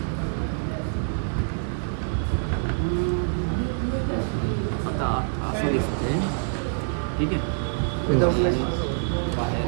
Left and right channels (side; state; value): left; silent; 56 dB below the other